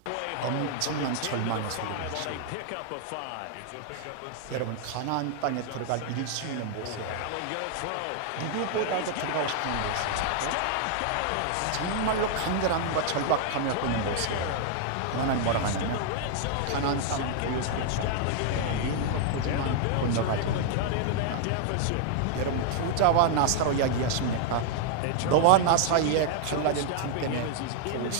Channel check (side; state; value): both; different; correlation 0.00